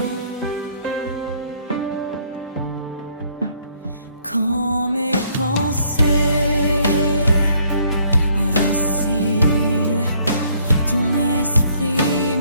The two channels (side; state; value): both; inverted; correlation -0.64